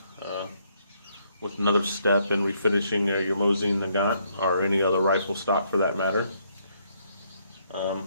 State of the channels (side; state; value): both; inverted; correlation -0.71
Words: with another step in refinishing your Mosin Nagant or any other rifle stock for that matter.